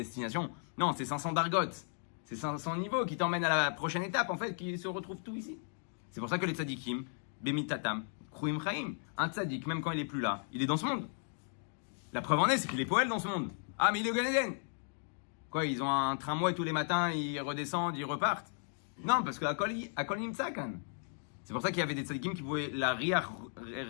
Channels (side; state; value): right; silent; 54 dB below the other